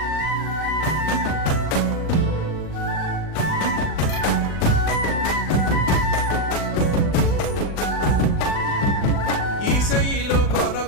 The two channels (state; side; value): late; right; 40 ms